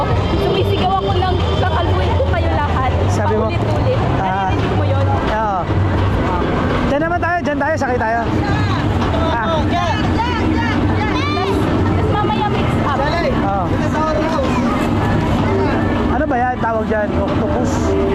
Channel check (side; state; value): both; identical; correlation 1.00